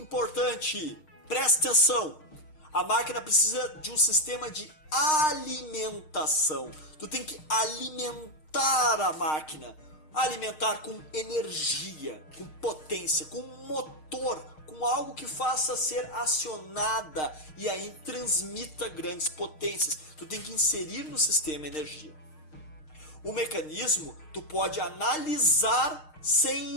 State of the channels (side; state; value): right; late; 6.5 ms